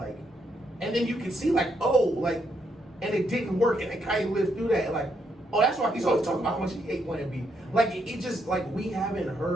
and then you can see like and it didn't work, and then Kanye lived through that, and like, oh, that's why he's always talking about how much he hate Plan B. Like it just like we haven't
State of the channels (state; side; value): normal; both; correlation 0.76